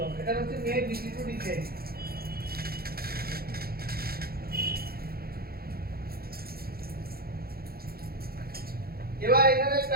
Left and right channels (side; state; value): left; late; 0.44 ms